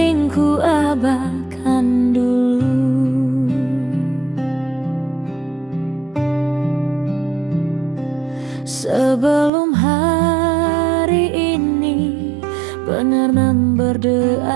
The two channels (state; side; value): drops out; left; at 9.5 s